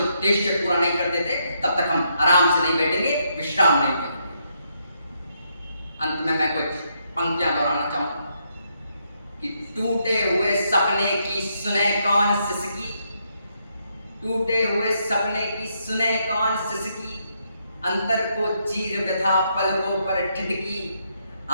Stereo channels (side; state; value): both; inverted; correlation -0.77